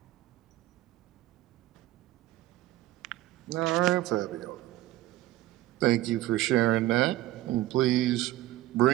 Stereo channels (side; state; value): left; quieter; 16.0 dB